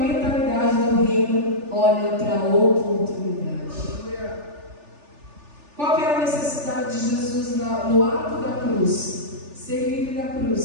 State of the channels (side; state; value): left; late; 3.4 ms